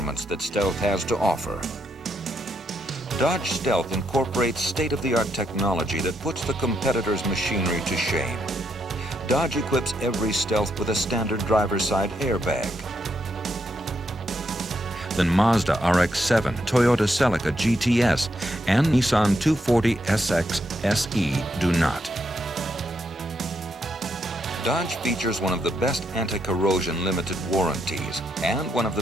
that Stealth has to offer. Dodge Stealth incorporates state-of-the-art technology that puts the competitor's machinery to shame. Dodge equips every Stealth with a standard driver's side airbag. Then Mazda RX-7, Toyota Celica GTS, and Nissan 240SX SE do not. Dodge features one of the best anti-corrosion limited warranties and one of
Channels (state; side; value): normal; both; correlation 0.78